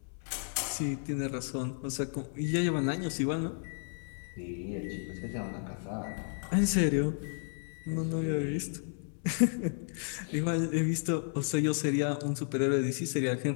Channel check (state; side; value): silent; right; 56 dB below the other